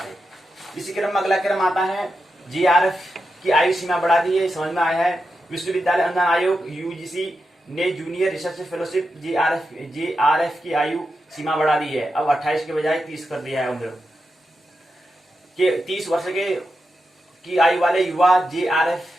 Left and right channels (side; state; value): both; normal; correlation 0.88